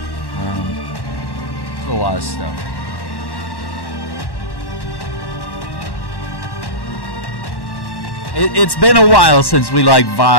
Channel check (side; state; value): right; late; 1.1 ms